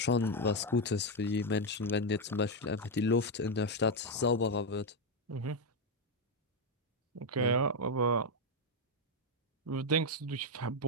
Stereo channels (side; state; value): both; normal; correlation 0.04